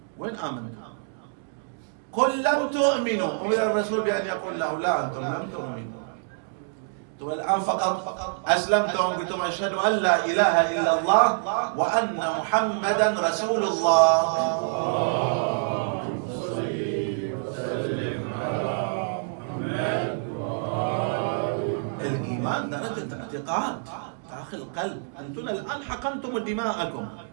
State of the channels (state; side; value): silent; left; digital silence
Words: وين آمنتم؟ قل لم تؤمنوا، أمر الرسول بأن يقول له لا أنتم لم تؤمنوا، أنتم الآن فقط أسلمتم قلتم أشهد أن لا إله إلا الله وأن محمدا رسول الله. الإيمان درجة اعتقاد داخل القلب. أنتم الآن حقنتم دماءكم